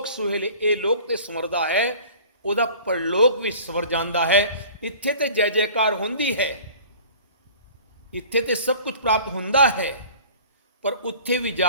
ਸੁਹੇਲੇ। ਇਹ ਲੋਕ ਤੇ ਸੰਵਰਦਾ ਹੈ, ਉਹਦਾ ਪਰਲੋਕ ਵੀ ਸੰਵਰ ਜਾਂਦਾ ਹੈ। ਇੱਥੇ ਤੇ ਜੈ ਜੈਕਾਰ ਹੁੰਦੀ ਹੈ, ਇੱਥੇ ਤੇ ਸਭ ਕੁਝ ਪ੍ਰਾਪਤ ਹੁੰਦਾ ਹੈ, ਪਰ ਉੱਥੇ ਵੀ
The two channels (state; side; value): inverted; both; correlation -0.46